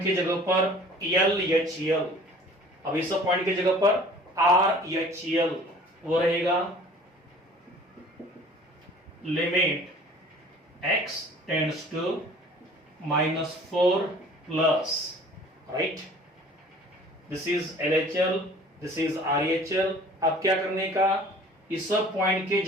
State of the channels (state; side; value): normal; both; correlation 0.48